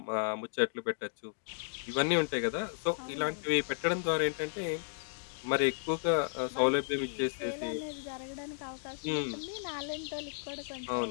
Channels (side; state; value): right; silent; digital silence